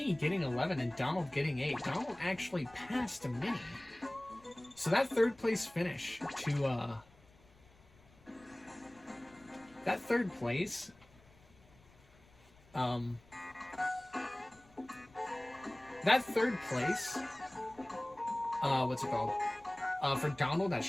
getting 11 and Donald getting 8, Donald actually passed Minnie. So that third place finish to that third place that third place what's it called? For Donald at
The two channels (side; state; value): left; noise; rumble, 27 dB below the sound